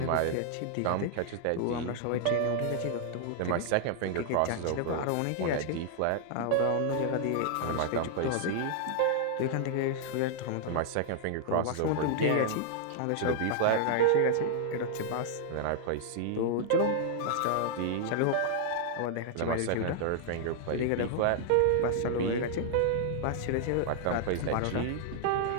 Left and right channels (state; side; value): different; both; correlation -0.01